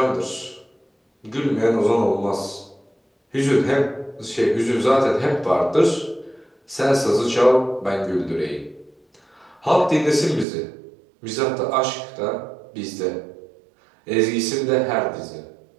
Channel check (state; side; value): drops out; left; at 10.5 s